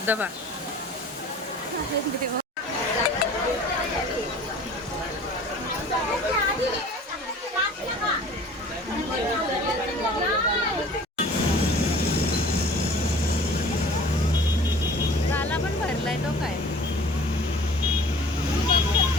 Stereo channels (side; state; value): both; normal; correlation 0.46